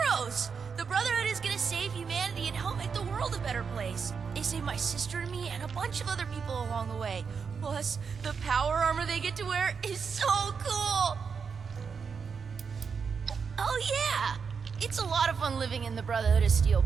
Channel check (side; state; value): left; quieter; 5.9 dB